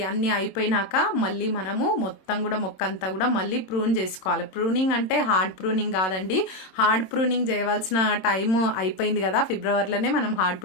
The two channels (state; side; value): late; right; 27 ms